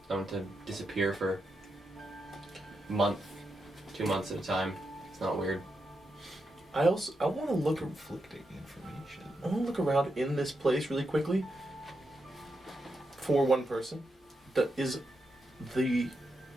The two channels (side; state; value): both; normal; correlation 0.85